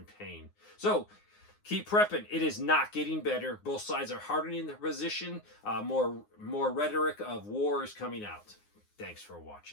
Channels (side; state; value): right; late; 9.6 ms